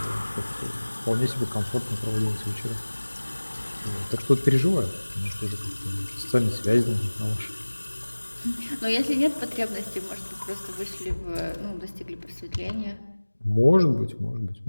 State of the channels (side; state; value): both; inverted; correlation -1.00